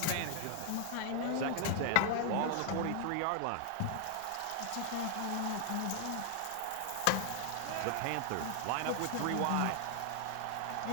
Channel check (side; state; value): both; different; correlation 0.00